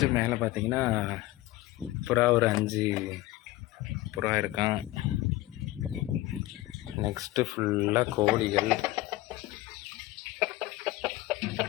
மேலே பார்த்திங்கன்னா புறா ஒரு 5 புறா இருக்கான். நெக்ஸ்ட்டு ஃபுல்லாக கோழிகள்.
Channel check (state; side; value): quieter; right; 17.5 dB